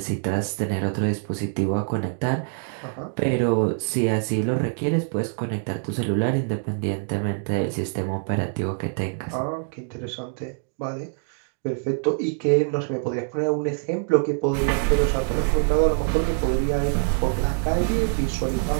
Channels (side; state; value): left; silent; digital silence